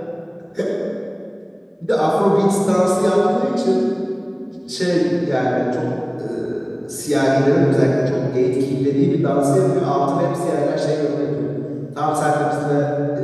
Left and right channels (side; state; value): both; identical; correlation 1.00